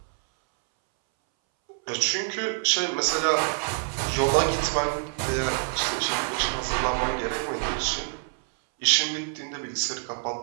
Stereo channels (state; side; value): silent; left; 61 dB below the other